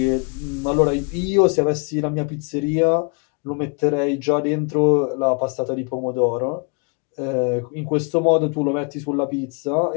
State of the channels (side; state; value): right; quieter; 36.4 dB